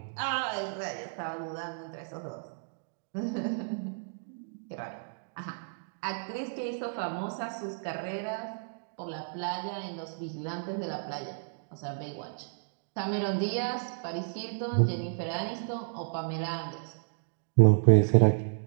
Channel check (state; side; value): silent; left; digital silence